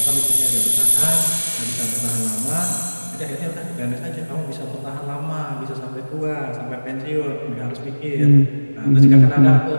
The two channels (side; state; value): both; inverted; correlation -1.00